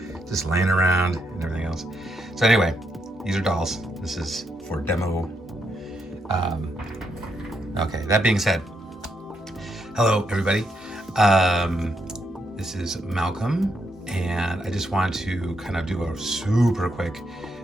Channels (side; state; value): both; normal; correlation 0.79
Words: just laying around and everything else. So anyway, these are dolls. This is for demo. Okay, that being said, hello everybody. This is Malcolm, and I just want to kind of do a super quick